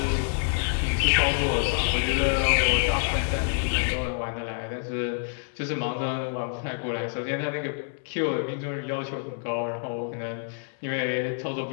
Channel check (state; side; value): silent; right; 60 dB below the other